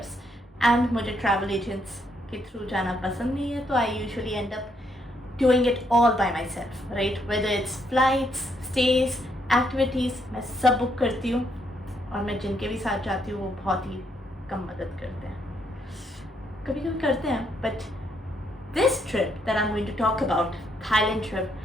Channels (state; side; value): normal; both; correlation 0.74